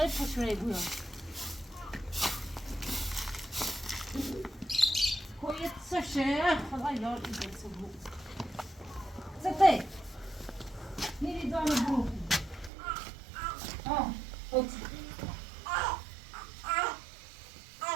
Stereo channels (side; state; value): left; drops out; at 12.7 s